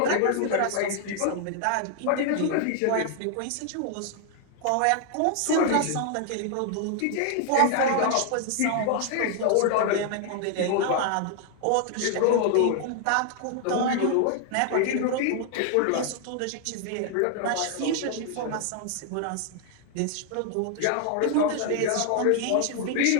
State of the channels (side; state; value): both; different; correlation 0.00